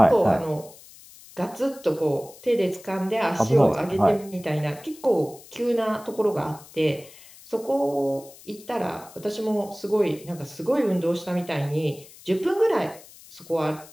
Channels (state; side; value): noise; left; hiss, 21 dB below the sound